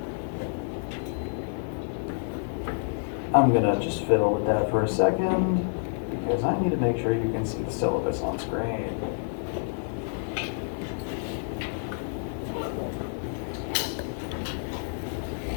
I'm gonna just fiddle with that for a second because I need to make sure you can see the syllabus on screen.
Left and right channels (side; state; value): right; silent; 56 dB below the other